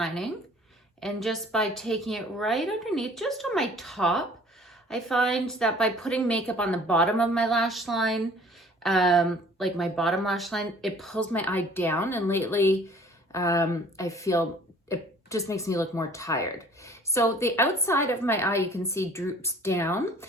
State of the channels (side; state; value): both; normal; correlation 0.52